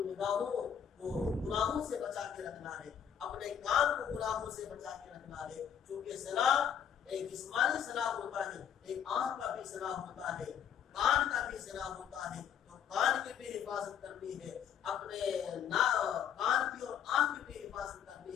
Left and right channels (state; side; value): quieter; right; 8.5 dB